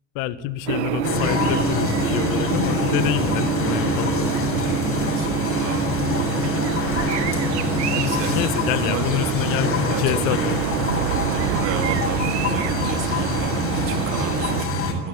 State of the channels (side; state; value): both; normal; correlation 0.18